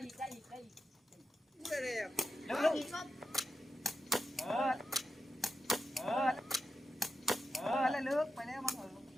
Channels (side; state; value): both; normal; correlation 0.89